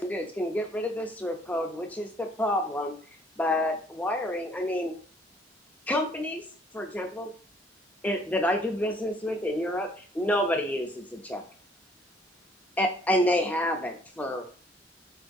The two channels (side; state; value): both; normal; correlation 0.61